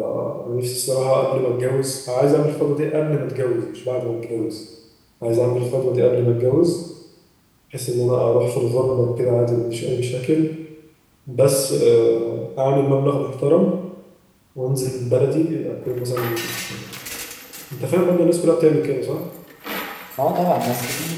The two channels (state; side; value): identical; both; correlation 1.00